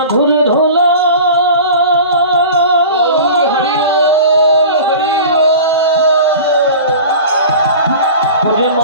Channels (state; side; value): inverted; both; correlation -0.37